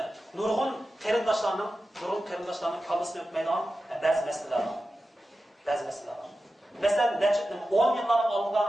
nurg'un qarindoshlarning kallasini o'tmaydigan ba'zi masalalar bor. Masalan, 10 yillar oldinda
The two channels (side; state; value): both; normal; correlation 0.93